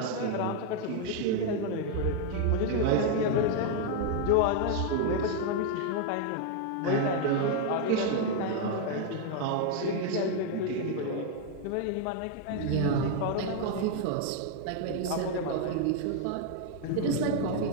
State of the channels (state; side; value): different; both; correlation 0.00